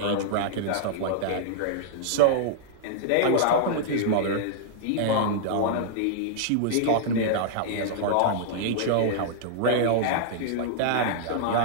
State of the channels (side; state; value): both; different; correlation -0.01